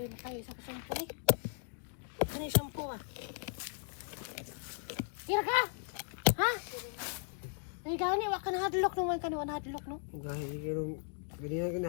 tayo isa ka shampoo eh. Ano yung shampoo ah? Tira ka! Ha? Ay gani, wak ka nahadlok naman ka naman nahadlok no? Gahit yung ganyan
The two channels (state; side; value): silent; right; 53 dB below the other